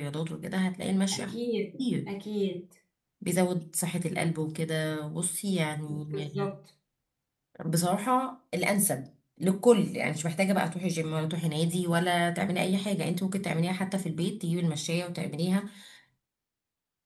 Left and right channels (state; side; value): identical; both; correlation 1.00